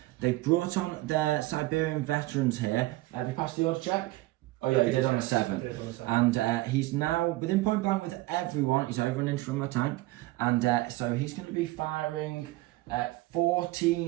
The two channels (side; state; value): left; quieter; 19.0 dB